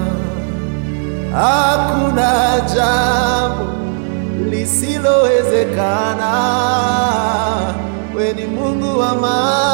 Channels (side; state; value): left; silent; digital silence